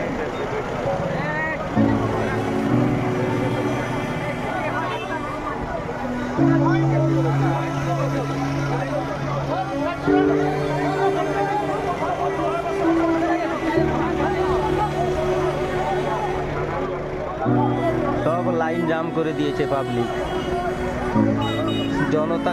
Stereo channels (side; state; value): both; identical; correlation 1.00